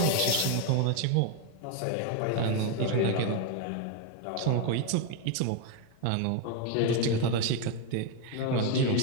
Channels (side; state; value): both; different; correlation 0.01